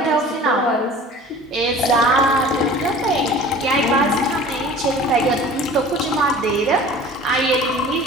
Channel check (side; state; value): both; normal; correlation 0.44